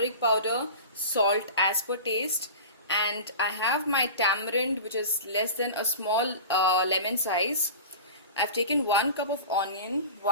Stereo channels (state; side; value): inverted; both; correlation -0.34